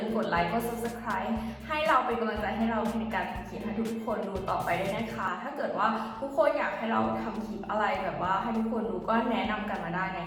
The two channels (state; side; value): identical; both; correlation 1.00